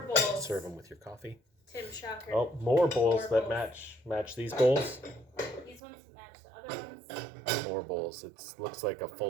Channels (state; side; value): drops out; left; at 5.8 s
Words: more bowls. Serve them with your coffee. Tim Shocker. Oh, more bowls More that bowls. match these bowls. These ones match the other ones. More bowls. It looks like a